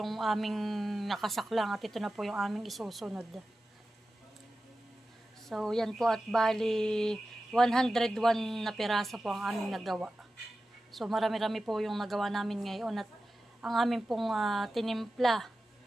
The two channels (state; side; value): normal; both; correlation 0.94